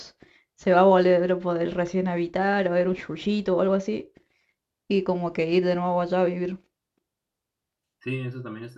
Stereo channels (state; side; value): identical; both; correlation 1.00